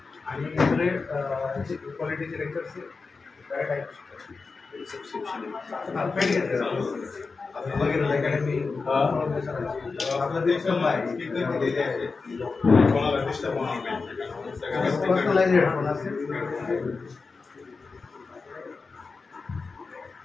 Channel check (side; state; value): right; quieter; 4.4 dB